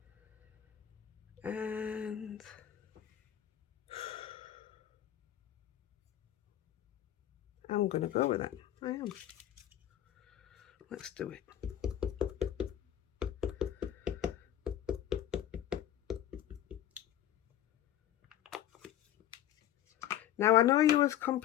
And I'm going to go with it. I am. Let's do it. Now, I know you was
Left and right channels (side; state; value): right; quieter; 11.8 dB